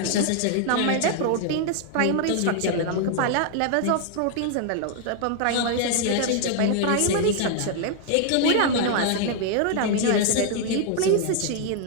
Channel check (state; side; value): different; both; correlation 0.00